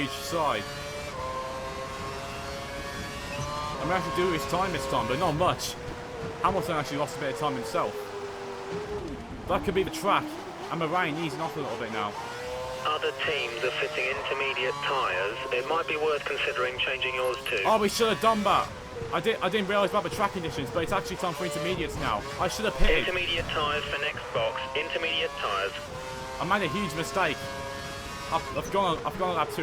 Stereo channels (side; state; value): both; identical; correlation 1.00